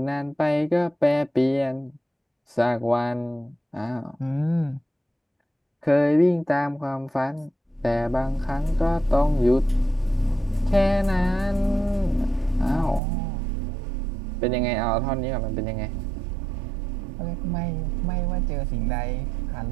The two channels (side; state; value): left; drops out; at 13.0 s